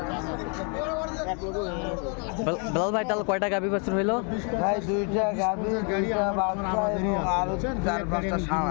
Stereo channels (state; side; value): quieter; right; 37.4 dB